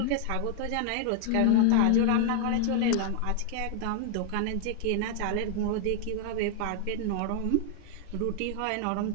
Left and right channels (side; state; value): both; different; correlation 0.00